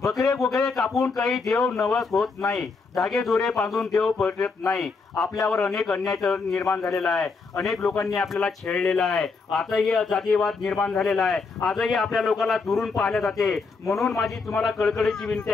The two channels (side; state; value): right; quieter; 4.4 dB